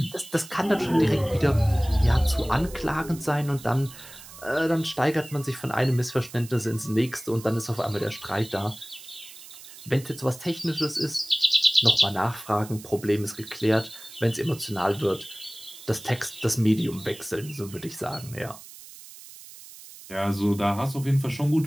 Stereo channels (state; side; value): noise; right; hiss, 17 dB below the sound